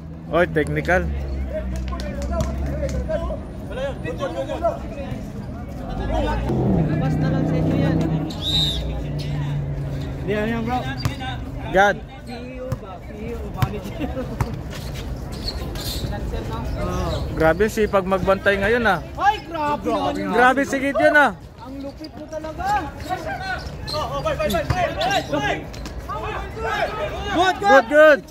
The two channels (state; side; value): identical; both; correlation 1.00